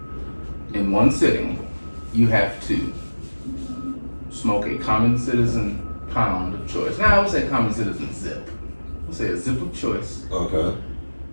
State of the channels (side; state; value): both; inverted; correlation -1.00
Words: In one sitting, you have to smoke a common citizen pound of choice. Now I would say common citizen zip. We'll say a zip of choice. Okay.